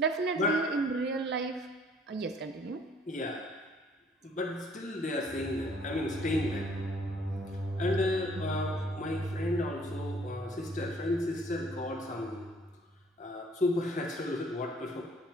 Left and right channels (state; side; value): normal; both; correlation 0.59